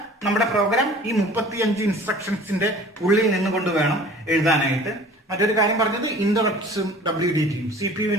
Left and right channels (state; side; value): normal; both; correlation 0.45